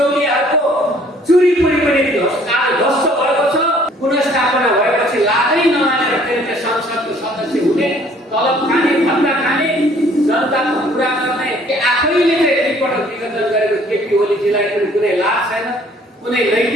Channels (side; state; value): both; normal; correlation 0.58